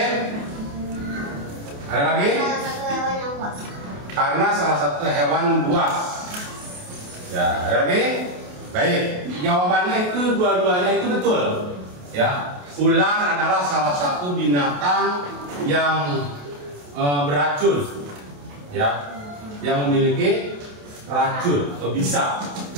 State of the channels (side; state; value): left; late; 28 ms